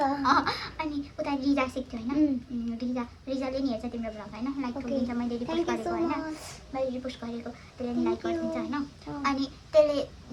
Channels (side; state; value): both; identical; correlation 1.00